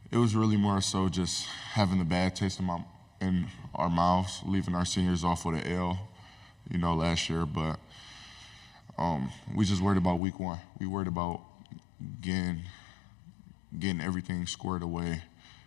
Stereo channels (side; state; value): right; drops out; at 10.2 s